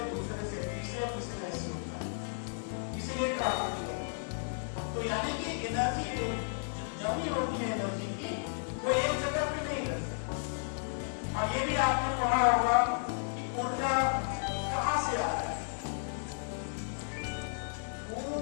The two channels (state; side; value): silent; right; digital silence